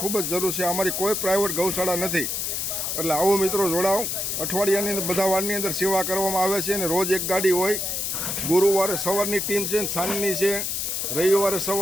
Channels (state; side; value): noise; left; hiss, 2 dB below the sound